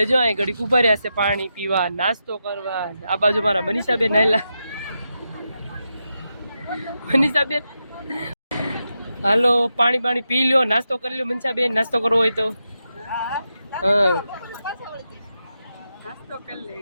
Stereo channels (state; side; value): inverted; both; correlation -0.87